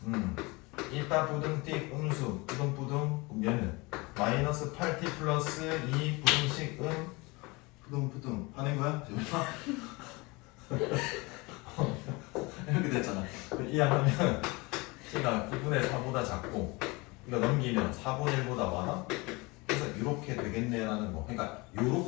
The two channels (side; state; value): right; quieter; 25.2 dB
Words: 1타 부등티 음수 부등부등. 그럼 얘는 마이너스 8t 플러스 2 부등식 부등부등 하는 거야? 이렇게 됐잖아. 이해하면 t가 9분의 4보다 작고 이거 넘기면 4분의 1보다 많아? 그래서 이렇게 되겠네라는 거. 그러니까